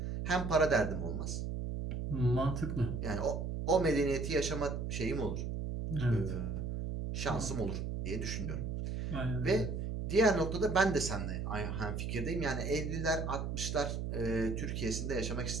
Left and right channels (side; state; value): right; noise; hum, 3 dB below the sound